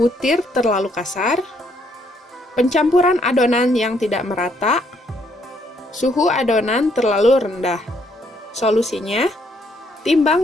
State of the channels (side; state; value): both; normal; correlation 0.70